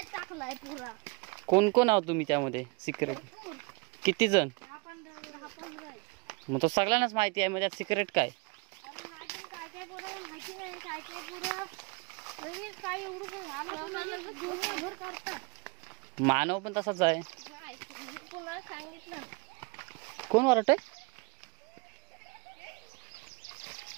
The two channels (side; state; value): left; quieter; 29.5 dB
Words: टाकलाय पुरा. कोण कोण आहोत तुम्ही त्यामध्ये सिक्रेट? किती जण? 10-15. मग तो सगळ्यांनाच माहिती आहे. मग त्यात सिक्रेट काय? काय माहिती नाही. काय पुरा काय एवढं घर काढतात. मानव पण तसाच आहे. तुला सांगितलं. कोण वरट आहे?